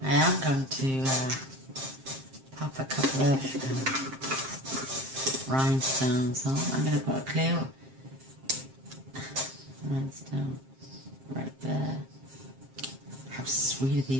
I am going to pop a couple of rhinestones on. I'm going to put a clear rhinestone right there. How sweet are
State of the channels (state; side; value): late; left; 7.6 ms